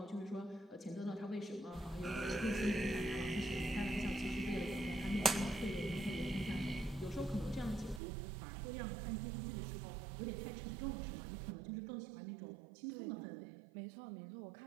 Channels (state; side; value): drops out; left; at 8.0 s